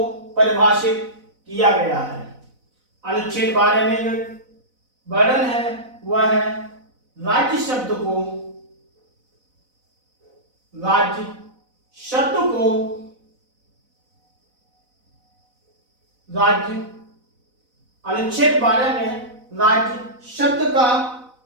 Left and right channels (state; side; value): late; left; 4.0 ms